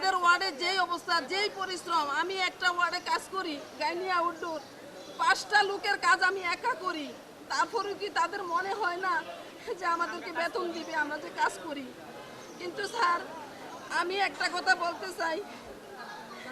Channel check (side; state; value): both; identical; correlation 1.00